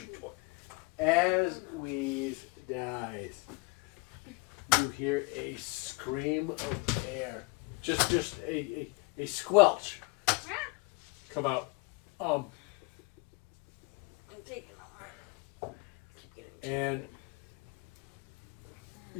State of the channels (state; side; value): quieter; right; 26.9 dB